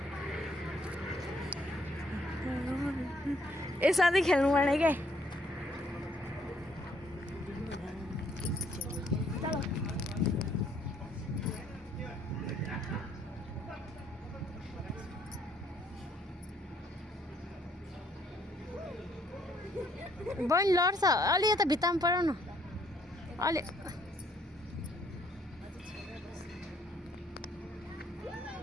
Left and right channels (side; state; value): both; normal; correlation 0.67